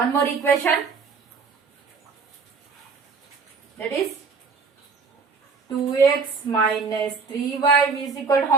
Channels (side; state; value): left; quieter; 4.9 dB